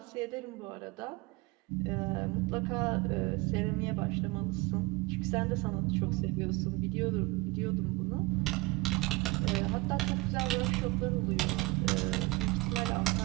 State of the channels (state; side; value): quieter; left; 22.9 dB